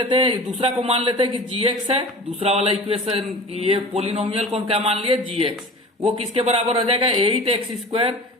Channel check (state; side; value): normal; both; correlation 0.37